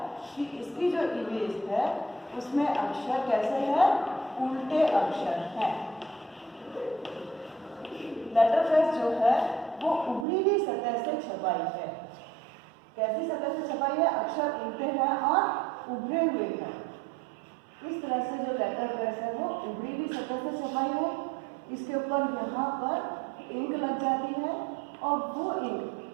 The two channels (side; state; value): left; drops out; at 10.2 s